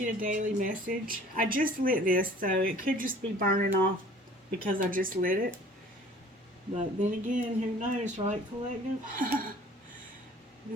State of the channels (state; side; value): normal; both; correlation 0.50